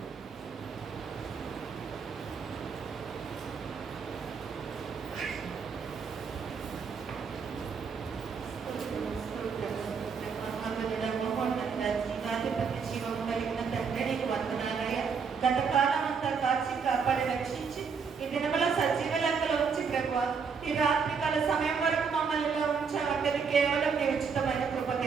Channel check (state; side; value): quieter; left; 5.8 dB